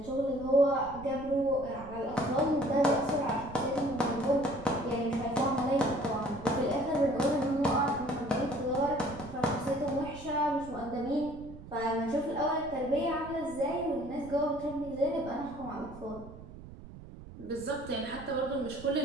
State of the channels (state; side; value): noise; right; rumble, 15 dB below the sound